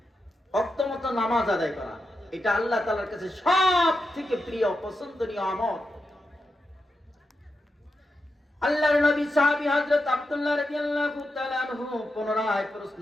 ওয়াক্তমতো নামাজ আদায় করা। এটা আল্লাহ তাআলার কাছে সবথেকে প্রিয় পছন্দনীয় আমল। আল্লাহর নবী সাহাবী হযরত আব্দুল্লাহ রাদিয়াল্লাহু তাআলা আনহু পুনরায় প্রশ্ন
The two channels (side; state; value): both; normal; correlation 0.87